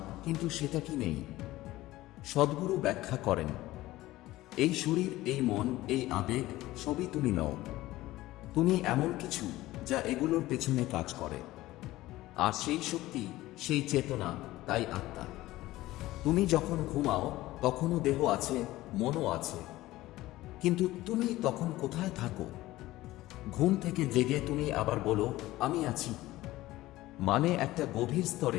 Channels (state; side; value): quieter; right; 17.0 dB